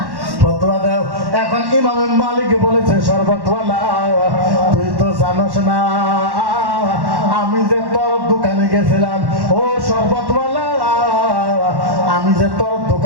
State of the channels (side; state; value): left; late; 1.1 ms